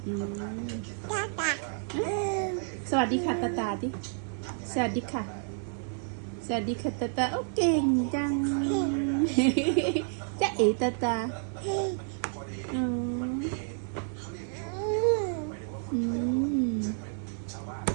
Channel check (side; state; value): left; silent; digital silence